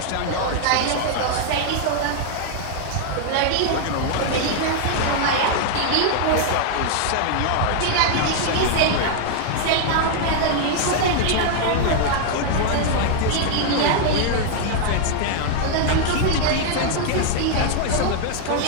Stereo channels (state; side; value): different; both; correlation 0.00